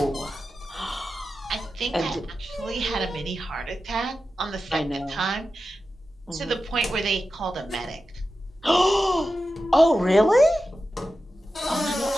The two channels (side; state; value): both; normal; correlation 0.92